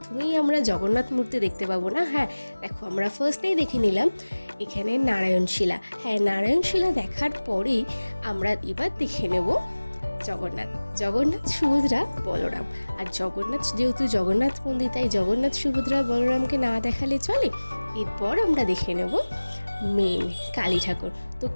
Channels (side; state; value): both; inverted; correlation -1.00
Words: আমরা জগন্নাথ মূর্তি দেখতে পাবো না। হ্যাঁ দেখো, আমরা ফার্স্টেই দেখে নিলাম এখানে নারায়ণশিলা। হ্যাঁ, নারায়ণশিলা দেখার পরেই আমরা এবার দেখে নেব জগন্নাথ সুভদ্রা বলরাম। আর জগন্নাথ যেহেতু জগন্নাথ মন্দির, তাই জগন্নাথ সুভদ্রা বলরামকে না দেখালে চলে। এরপর আমরা দেখে নেব মেন কালী ঠাকুর। তো